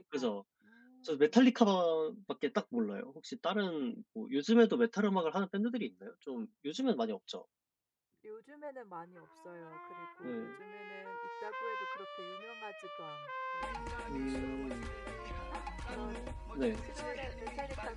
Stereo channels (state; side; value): identical; both; correlation 1.00